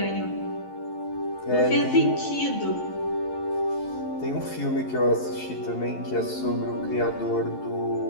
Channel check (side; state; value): right; late; 11 ms